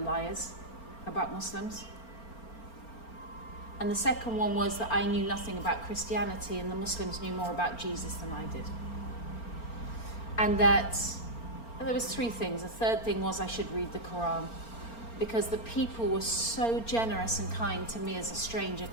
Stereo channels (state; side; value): late; right; 4.4 ms